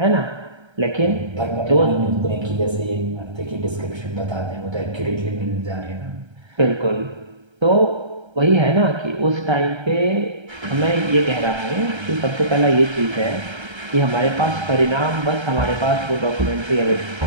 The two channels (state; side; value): late; left; 1.3 ms